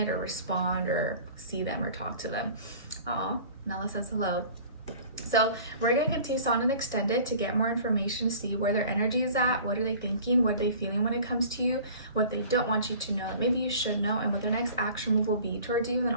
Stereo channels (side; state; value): both; inverted; correlation -0.45